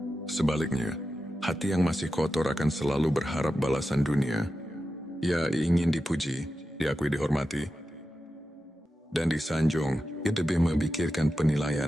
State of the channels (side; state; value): both; normal; correlation 0.91